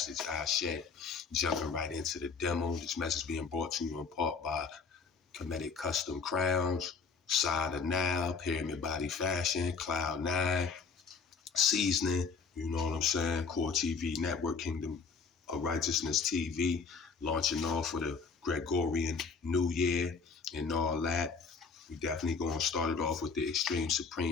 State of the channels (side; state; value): right; quieter; 5.2 dB